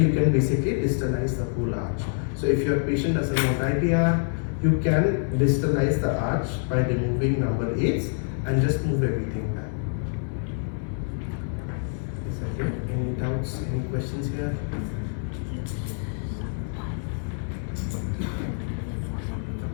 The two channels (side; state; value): right; silent; 61 dB below the other